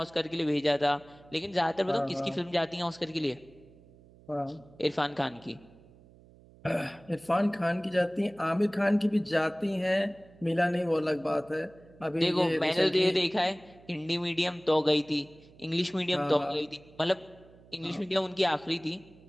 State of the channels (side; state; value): right; noise; hum, 25 dB below the sound